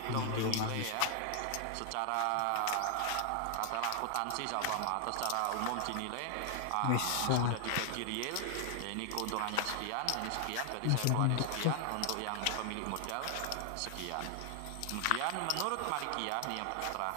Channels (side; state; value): both; different; correlation 0.00